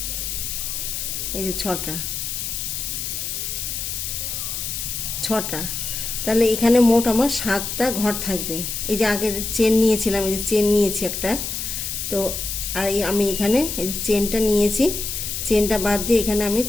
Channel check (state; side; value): noise; left; hiss, 4 dB below the sound